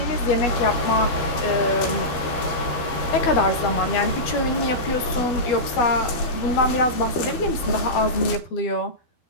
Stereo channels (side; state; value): right; late; 12 ms